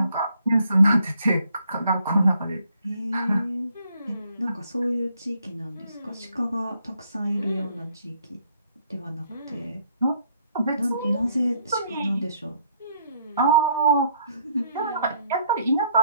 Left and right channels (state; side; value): inverted; both; correlation -0.67